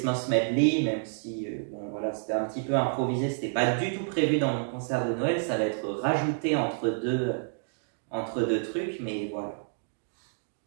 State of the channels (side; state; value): left; silent; digital silence